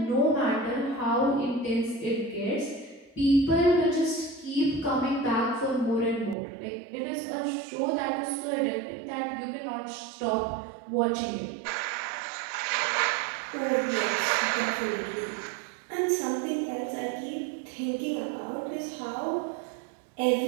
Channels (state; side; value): drops out; left; at 6.4 s